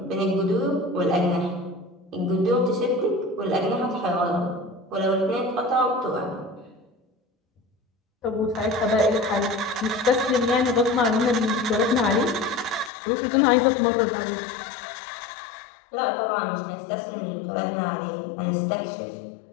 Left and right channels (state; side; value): drops out; right; at 12.9 s